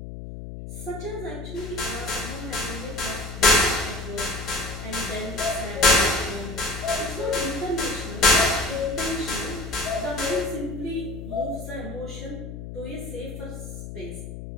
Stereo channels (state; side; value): noise; left; hum, 9 dB below the sound